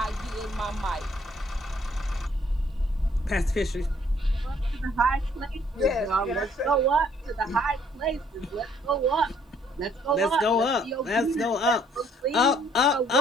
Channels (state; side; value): normal; both; correlation 0.63